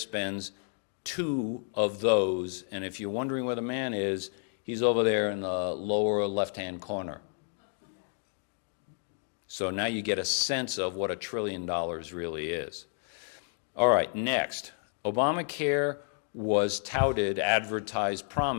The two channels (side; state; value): right; silent; 57 dB below the other